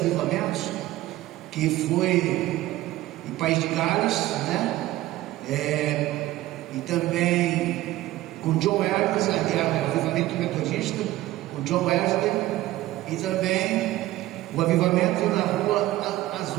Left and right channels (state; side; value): quieter; left; 16.1 dB